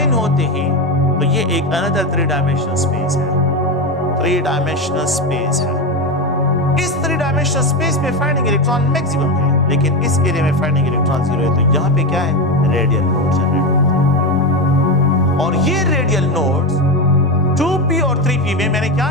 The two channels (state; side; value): normal; both; correlation 0.15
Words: होते हैं तो ये एक अनदर 3 डायमेंशनल स्पेस है। 3 डायमेंशनल स्पेस है। इस 3 डायमेंशनल स्पेस में फाइंडिंग इलेक्ट्रॉन मैक्सिमम है, लेकिन इस एरिया में फाइंडिंग इलेक्ट्रॉन 0 है। तो यहाँ पे क्या है, रेडियल नोड्स जनरेट होते हैं। और ये रेडियल नोड्स 2p और 3p में मैंने क्या